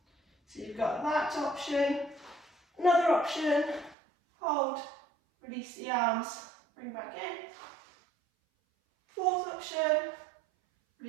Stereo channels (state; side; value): drops out; left; at 4.0 s